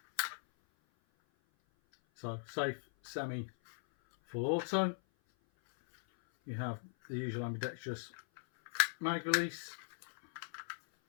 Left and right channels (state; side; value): silent; right; 52 dB below the other